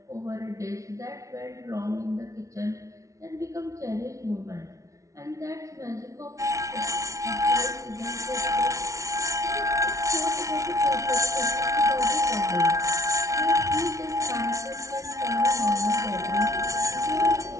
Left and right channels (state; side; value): late; left; 0.15 ms